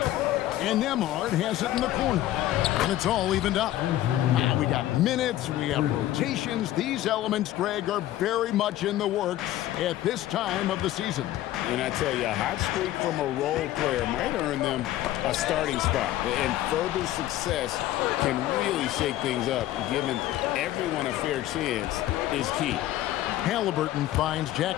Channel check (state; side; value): quieter; right; 14.1 dB